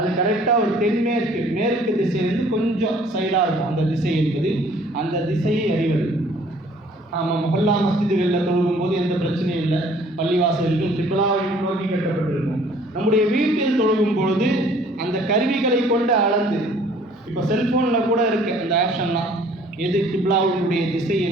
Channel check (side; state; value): both; normal; correlation 0.56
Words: கரெக்டாக ஒரு தென்மேற்கு, மேற்கு திசையிலிருந்து கொஞ்சம் சைடாக இருக்கும் அந்த திசை என்பது. அந்த திசையை அறிவது. ஆமாம், மொஹல்லா மஸ்ஜிதுகளில் தொழுகும் போது எந்த பிரச்சனையும் இல்லை. பள்ளிவாசல்கள் கிப்லாவை நோக்கி கட்டப்பட்டிருக்கும். நம்முடைய வீட்டில் தொழுகும் பொழுது அந்த கருவிகளை கொண்டு அளந்து, இப்போ செல்ஃபோனில் கூட இருக்குது அந்த ஆப்ஷன்லாம், எது கிப்லாவுடைய திசை